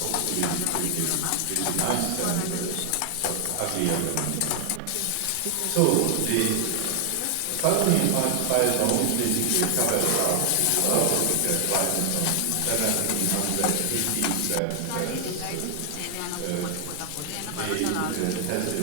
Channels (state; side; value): different; both; correlation 0.00